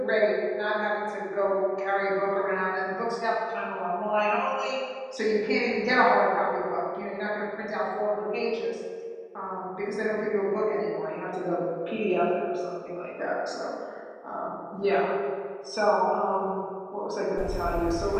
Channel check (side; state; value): both; identical; correlation 1.00